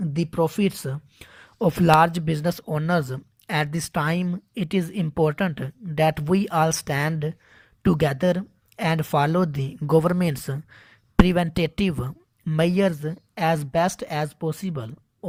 profits of large business owners at this time, it is important that we all stand together and follow the government's preventative measures as best as possible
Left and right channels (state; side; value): identical; both; correlation 1.00